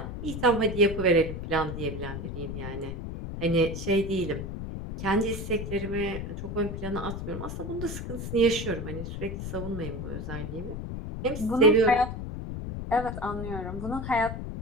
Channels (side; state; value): left; noise; rumble, 6 dB below the sound